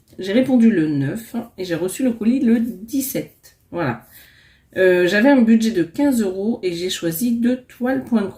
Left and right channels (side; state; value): both; identical; correlation 1.00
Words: répondu le 9 et j'ai reçu le colis le 17. Voilà. J'avais un budget de 15 € et j'ai choisi 2 toiles point de